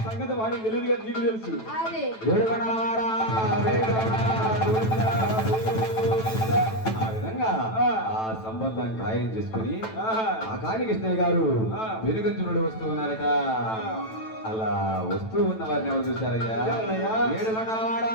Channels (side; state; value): right; late; 9.1 ms